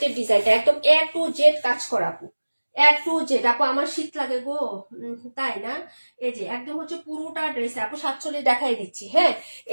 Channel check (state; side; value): inverted; both; correlation -1.00